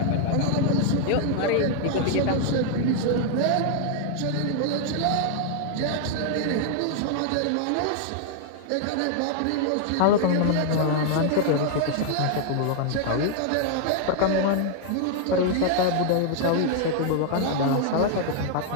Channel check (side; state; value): both; different; correlation 0.00